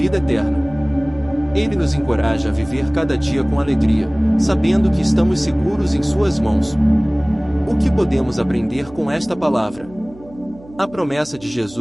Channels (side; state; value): right; noise; hum, 21 dB below the sound